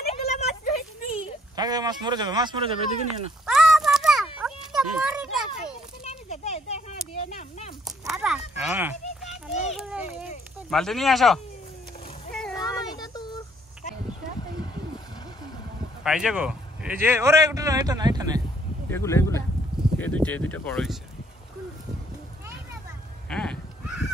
মাছ মরে যাবে এদিকে নিয়ে না বালতি নিয়ে আসো পাইছে গো এই যে ওরে এটা না এগুলো এই দুইটা বড় হয়েছে হ্যাঁ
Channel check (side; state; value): both; normal; correlation 0.64